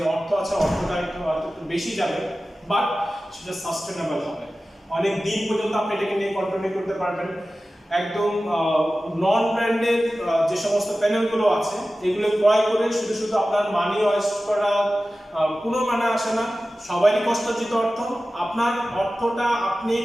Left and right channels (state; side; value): normal; both; correlation 0.95